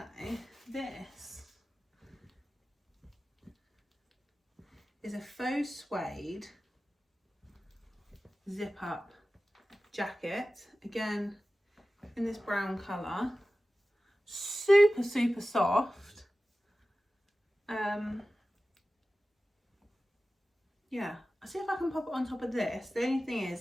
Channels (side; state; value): both; normal; correlation 0.95